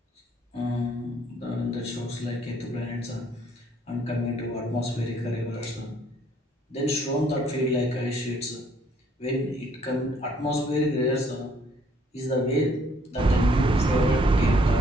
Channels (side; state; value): both; normal; correlation 0.64